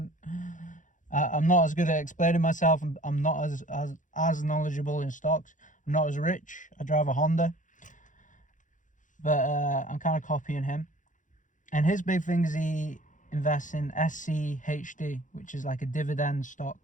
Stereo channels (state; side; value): late; right; 0.37 ms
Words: I'm not as good at explaining myself. I'm not as knowledgeable in stocks. I'm not as rich. I drive a Honda, but I'm kind of copying him. And his big thing is he invests in SCHD, which is like a dividend